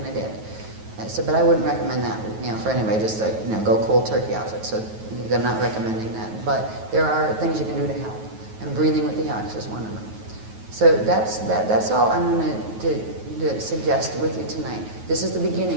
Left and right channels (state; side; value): late; left; 9.3 ms